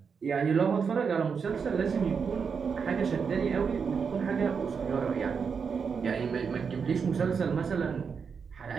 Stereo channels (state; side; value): quieter; left; 6.0 dB